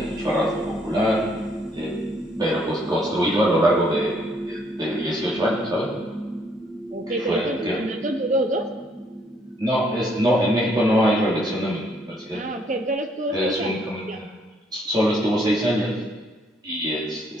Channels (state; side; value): normal; both; correlation 0.68